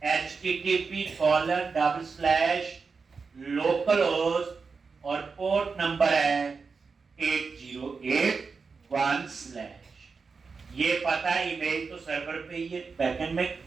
http://localhost और पोर्ट नंबर है 8081/। ये पता है, इमेज तो सर्वर पे ही है, बैकएंड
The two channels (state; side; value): quieter; left; 4.9 dB